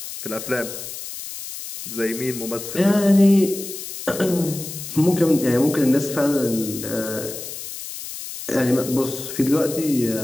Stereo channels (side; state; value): left; noise; hiss, 10 dB below the sound